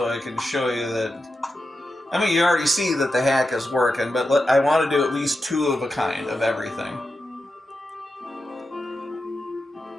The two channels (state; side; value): normal; both; correlation 0.90